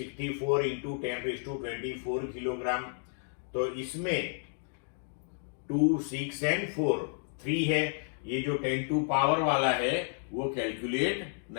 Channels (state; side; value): silent; right; digital silence